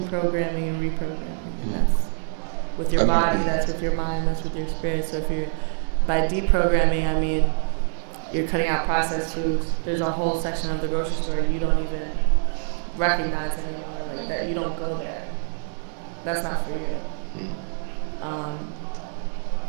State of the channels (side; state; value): left; silent; 62 dB below the other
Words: and reprogramming. And that's with your body, that's with your mind, that's with your spirit. So by deprogramming, I mean you're cutting out processed foods. There's a whole section of the grocery store you don't even recognize anymore, like that. You don't go there. That's not for you.